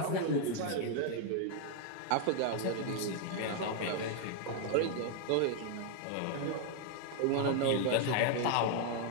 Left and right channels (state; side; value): different; both; correlation 0.00